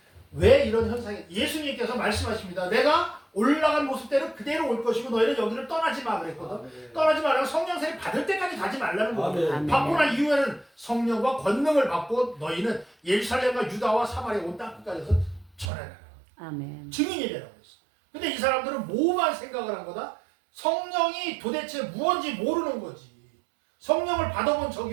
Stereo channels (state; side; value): drops out; left; at 15.7 s